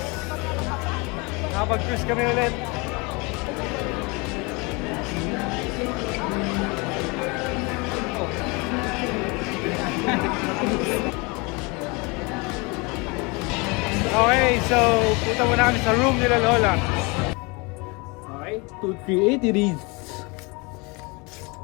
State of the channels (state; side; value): quieter; right; 28.0 dB